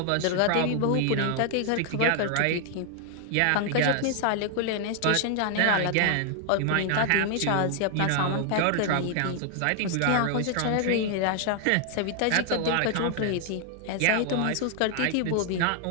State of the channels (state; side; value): different; both; correlation 0.00